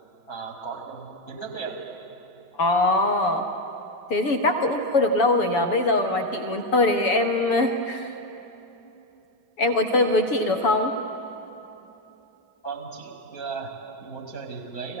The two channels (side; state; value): right; late; 7.0 ms